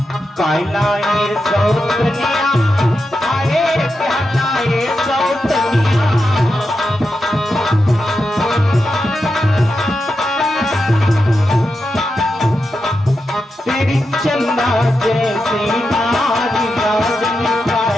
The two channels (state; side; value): normal; both; correlation 0.88